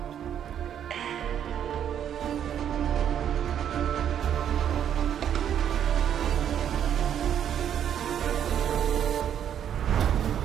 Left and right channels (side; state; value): left; quieter; 9.4 dB